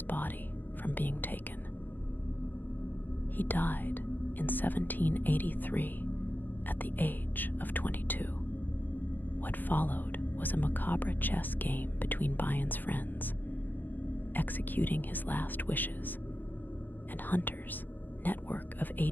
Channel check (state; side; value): late; right; 0.089 ms